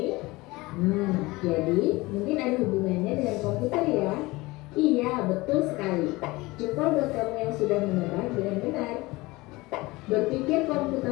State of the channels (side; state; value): right; quieter; 21.6 dB